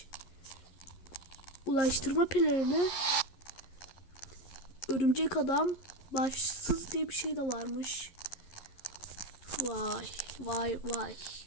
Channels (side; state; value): right; late; 11 ms